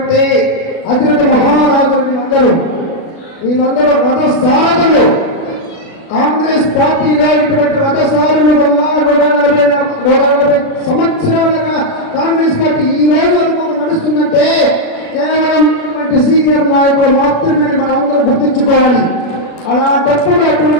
అతిరథ మహారాజులు వీళ్ళందరూ రథసారథులు. కాంగ్రెస్ పార్టీలో ఇటువంటి రథసారులు వల్ల 140 సంవత్సరాలుగా కాంగ్రెస్ పార్టీ ఈ రోజు వరకు నడుస్తుందంటే కేవలం సీనియర్ నాయకులు మాత్రమే మనం అందరూ గుర్తించుకోవాలి. అలాంటప్పుడు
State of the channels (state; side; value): late; right; 36 ms